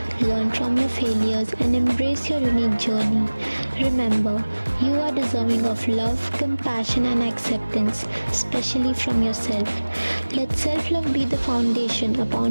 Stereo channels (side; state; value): both; inverted; correlation -1.00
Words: learn from your failures, and embrace your unique journey. Remember, you are deserving of love, compassion, and acceptance, especially from yourself. Let self love be the foundation